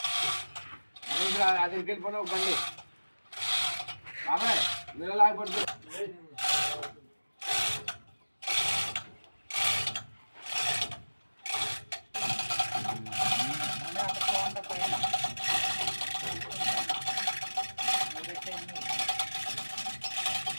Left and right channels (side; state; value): both; inverted; correlation -1.00